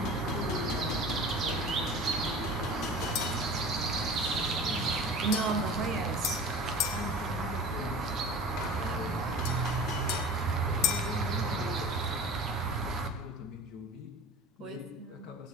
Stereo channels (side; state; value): both; normal; correlation 0.38